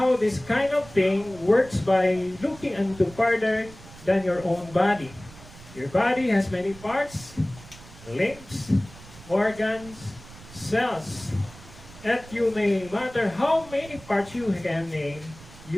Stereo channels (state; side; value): noise; right; rumble, 19 dB below the sound